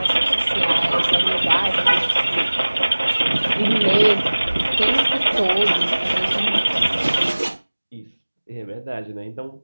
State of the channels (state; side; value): inverted; both; correlation -1.00